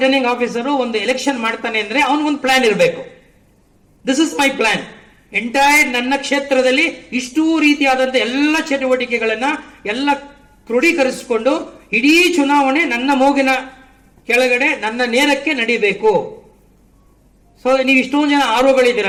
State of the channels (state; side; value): identical; both; correlation 1.00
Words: officer ಒಂದು election ಮಾಡ್ತಾನೆ ಅಂದ್ರೆ ಅವನಿಗೊಂದು ಪ್ಲಾನ್ ಇರಬೇಕು. This is my plan. Entire ನನ್ನ ಕ್ಷೇತ್ರದಲ್ಲಿ ಇಷ್ಟೂ ರೀತಿಯಾದಂತ ಎಲ್ಲ ಚಟುವಟಿಕೆಗಳನ್ನ ಎಲ್ಲ ಕ್ರೋಢೀಕರಿಸಿಕೊಂಡು ಇಡೀ ಚುನಾವಣೆ ನನ್ನ ಮೂಗಿನ ಕೆಳಗಡೆ ನನ್ನ ನೇರಕ್ಕೆ ನಡೀಬೇಕು. ಸೊ ನೀವು ಇಷ್ಟೊಂದು ಜನ